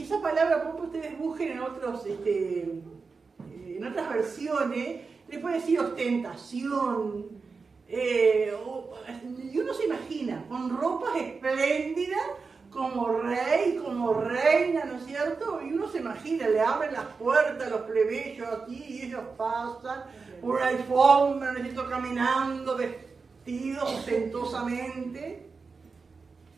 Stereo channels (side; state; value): left; quieter; 4.7 dB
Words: esa palabra, pompa, ustedes busquen en otras versiones, le puede decir ostentación. Y uno se imagina, con ropas espléndidas, como rey, como reina, ¿no es cierto? Y uno se imagina, le abren las puertas a los plebeyos aquí y ellos pasan por una alfombra, ¿no es cierto?, caminando, vestidos ostentosamente.